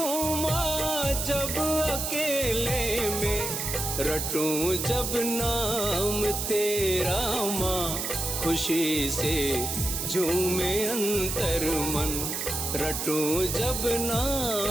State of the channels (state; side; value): noise; right; hiss, 3 dB below the sound